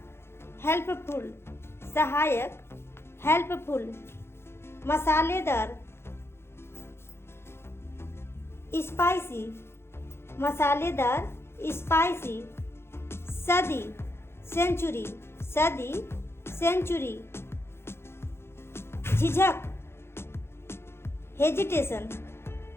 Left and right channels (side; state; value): right; late; 0.12 ms